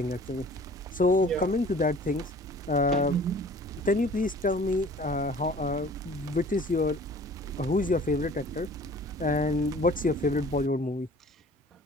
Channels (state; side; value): normal; both; correlation 0.48